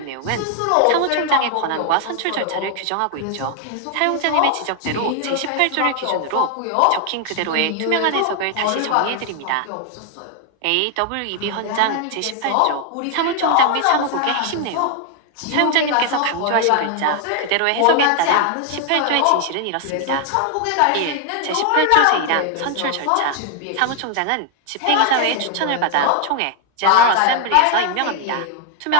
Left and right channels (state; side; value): different; both; correlation 0.00